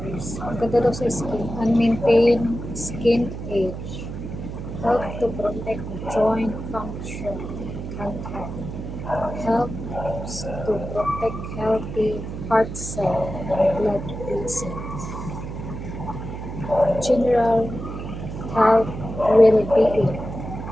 Ang ganda daw sa skin. And maintain skin age. Help to protect joint function and health. Helps to protect healthy heart cell and blood vessels. General health well-being.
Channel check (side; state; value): right; noise; hum, 8 dB below the sound